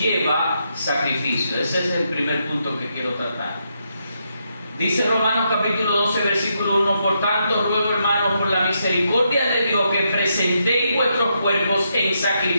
sacrificio. Ese es el primer punto que quiero tratar. Dice Romanos capítulo 12, versículo 1: por tanto, ruego, hermanos, por la misericordia de Dios, que presentéis vuestros cuerpos en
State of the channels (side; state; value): both; inverted; correlation -0.80